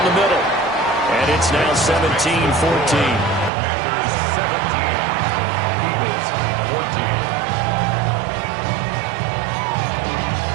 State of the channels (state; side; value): drops out; left; at 3.5 s